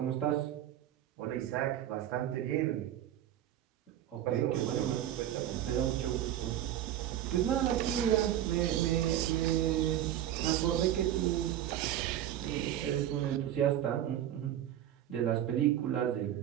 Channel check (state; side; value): quieter; left; 11.6 dB